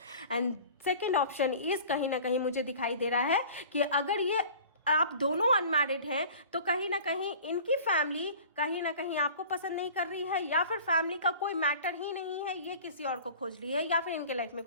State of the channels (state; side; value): inverted; both; correlation -0.43